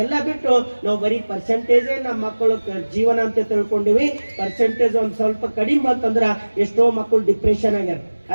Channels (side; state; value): both; inverted; correlation -1.00